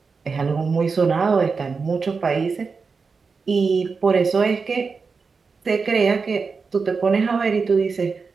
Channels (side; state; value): left; quieter; 4.9 dB